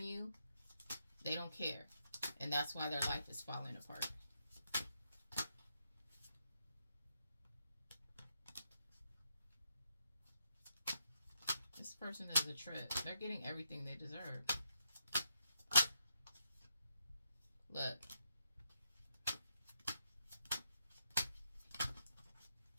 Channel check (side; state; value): both; inverted; correlation -0.81